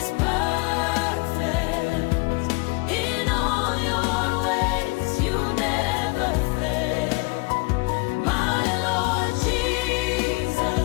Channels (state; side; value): quieter; right; 28.7 dB